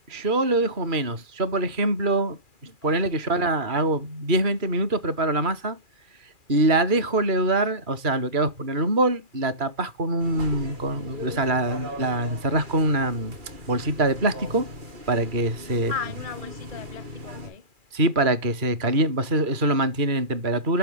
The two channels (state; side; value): late; left; 2.4 ms